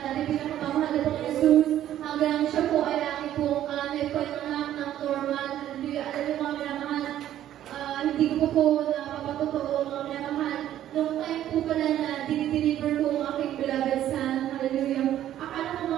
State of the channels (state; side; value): quieter; left; 12.0 dB